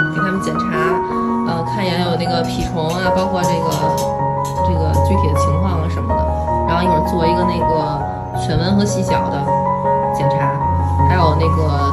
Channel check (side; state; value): both; identical; correlation 1.00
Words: 检查，看一眼有那个蜱虫啊，包括这个具体的情况啊什么的。然后一会儿做一个那个犬瘟和细小的检查，还有那